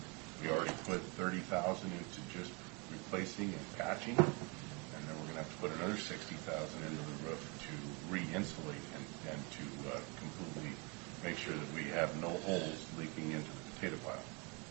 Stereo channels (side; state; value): left; quieter; 31.1 dB